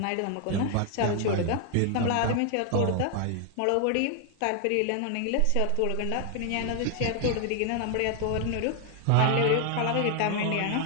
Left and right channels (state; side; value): different; both; correlation 0.00